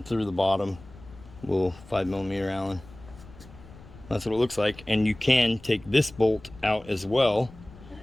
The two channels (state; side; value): noise; left; rumble, 20 dB below the sound